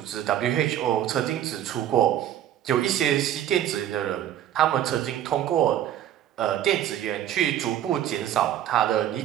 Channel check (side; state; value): left; quieter; 11.5 dB